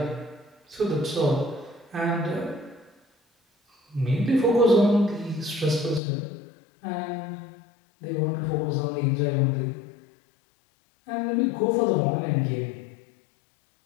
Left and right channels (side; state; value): right; drops out; at 6.0 s